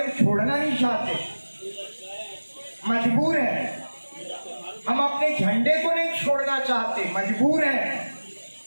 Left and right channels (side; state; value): both; inverted; correlation -1.00